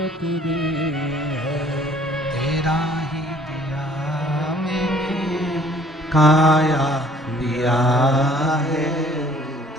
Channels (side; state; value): both; normal; correlation 0.57